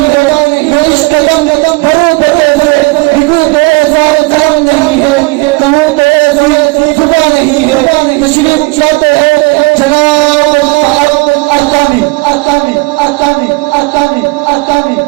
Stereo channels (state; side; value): quieter; left; 25.3 dB